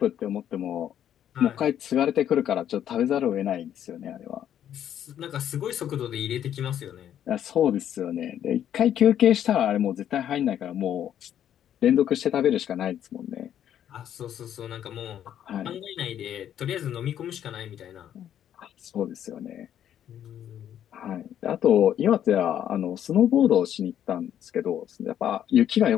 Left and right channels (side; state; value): right; quieter; 10.3 dB